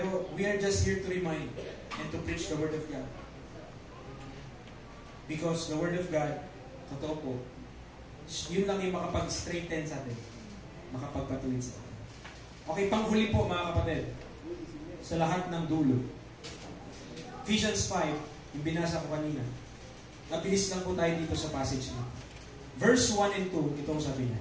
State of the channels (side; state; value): both; identical; correlation 1.00